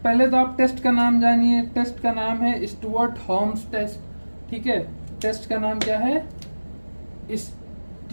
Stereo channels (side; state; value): both; inverted; correlation -1.00